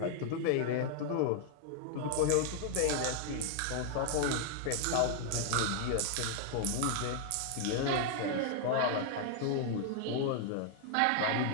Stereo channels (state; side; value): different; both; correlation -0.01